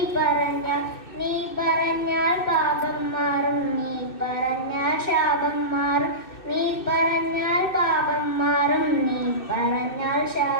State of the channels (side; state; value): right; late; 2.6 ms